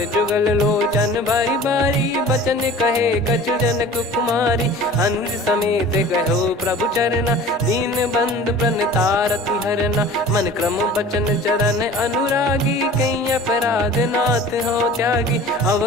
जुगल लोचन बारी बारी बचन कहे कछु जनक कुमारी। अनुज समेत गहो प्रभु चरना दीन बंधु प्रणतारति हरना। मन क्रम बचन चरण अनुरागी कहीं अपराध नाथ हो त्यागी।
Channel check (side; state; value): both; normal; correlation 0.42